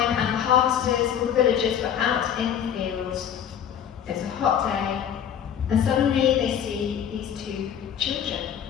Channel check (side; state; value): right; quieter; 9.1 dB